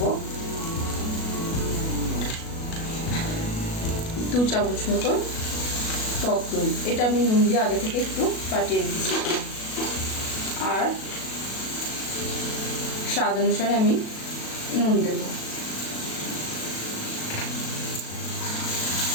2 চামচ মতন টক দই। এটা আমি নুন দিয়ে আগে থেকে একটু ফাটিয়ে রেখেছি। আর স্বাদ অনুসারে আমি নুন দেব।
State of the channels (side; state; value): right; late; 37 ms